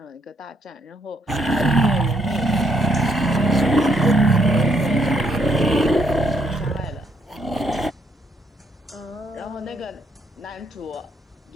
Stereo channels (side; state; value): both; normal; correlation 0.72